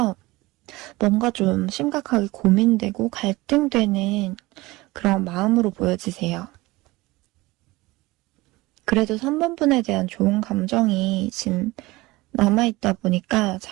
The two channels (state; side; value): quieter; left; 20.7 dB